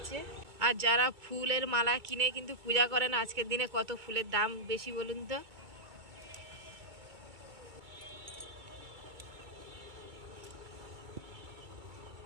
আর যারা ফুলের মালা কিনে কিন্তু পূজা করেন আজকের দিনে, কত ফুলের দাম বেশি বলুন তো।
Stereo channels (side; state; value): left; late; 2.3 ms